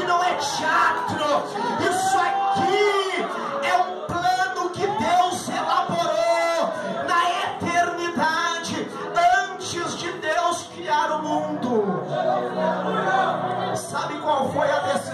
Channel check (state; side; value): identical; both; correlation 1.00